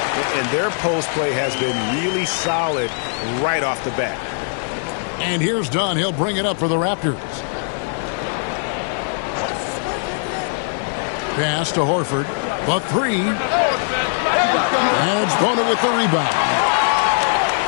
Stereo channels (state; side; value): silent; right; digital silence